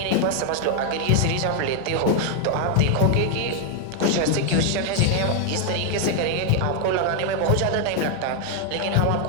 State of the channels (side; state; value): both; different; correlation 0.00